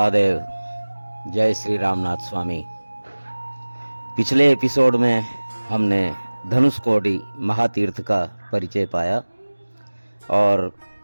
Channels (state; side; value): inverted; both; correlation -1.00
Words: जय श्री रामनाथ स्वामी। पिछले एपिसोड में हमने धनुषकोडी महातीर्थ का परिचय पाया और